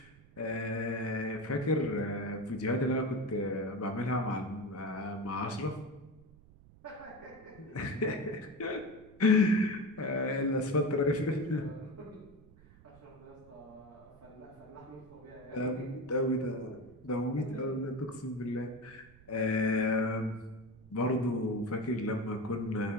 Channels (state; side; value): noise; right; rumble, 24 dB below the sound